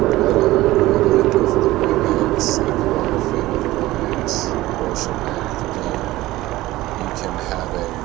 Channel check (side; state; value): left; quieter; 17.4 dB